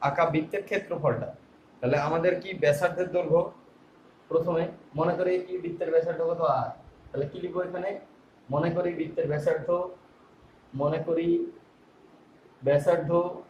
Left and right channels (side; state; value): both; identical; correlation 1.00